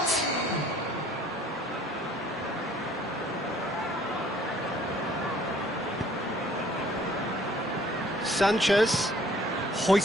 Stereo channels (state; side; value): normal; both; correlation 0.57